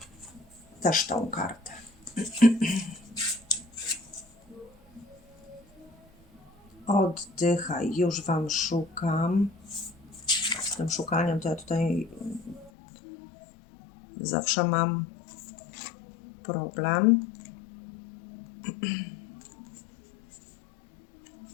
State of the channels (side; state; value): right; drops out; at 12.7 s